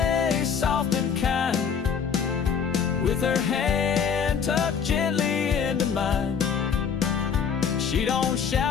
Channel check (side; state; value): right; quieter; 6.9 dB